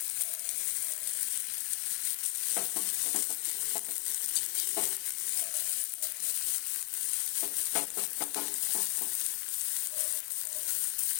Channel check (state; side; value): quieter; right; 38.5 dB